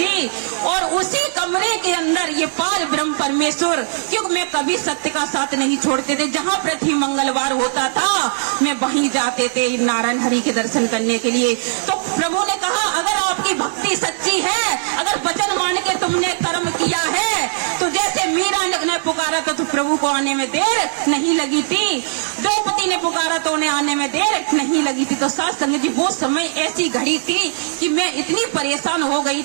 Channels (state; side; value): silent; left; digital silence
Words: और उसी कमरे के अंदर ये पार ब्रह्म परमेश्वर, क्योंकि मैं कभी सत्य का साथ नहीं छोड़ते थे। जहां प्रति मंगलवार होता था मैं वहीं जाते थे नारायण हरि के दर्शन करने के लिए। तो प्रभु ने कहा, अगर आपकी भक्ति सच्ची है, अगर वचन मान के तुमने कर्म किया है, तो जैसे मीरा ने मैं पुकारा तो प्रभु को आने में देर नहीं लगी थी, द्रौपदी ने पुकारा तो उन्हें आने में देर नहीं लगी थी। तो साथ संगत जी वो समय ऐसी घड़ी थी कि मैं इतनी परेशान हो गई